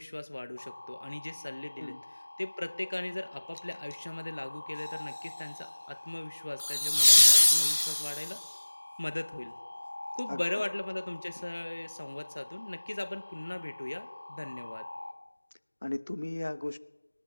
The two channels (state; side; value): inverted; both; correlation -1.00